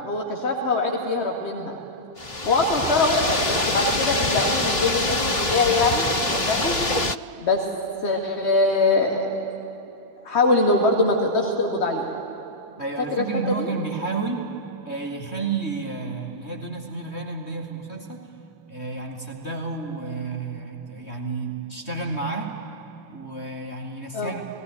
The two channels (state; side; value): late; right; 3.2 ms